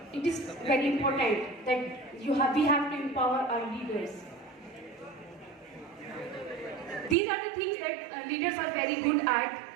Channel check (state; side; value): drops out; left; at 7.2 s